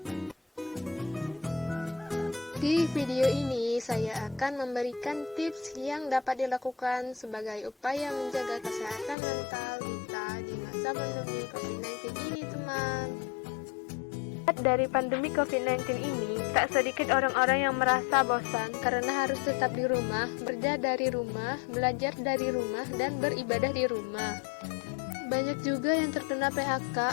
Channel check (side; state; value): right; drops out; at 9.2 s